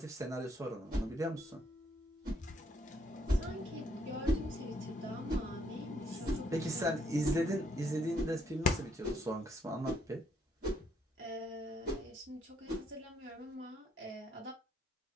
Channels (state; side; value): normal; both; correlation 0.71